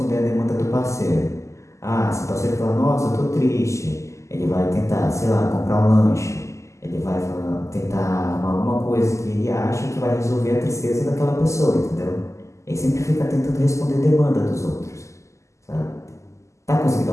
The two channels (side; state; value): right; late; 0.14 ms